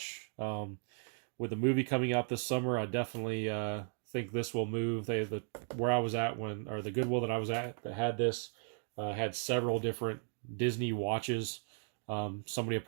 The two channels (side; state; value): left; silent; 54 dB below the other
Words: With the movie coming out this summer, I definitely think this will move. Where I was at the Goodwill that I was at that had this, had several different Disney watches. Somebody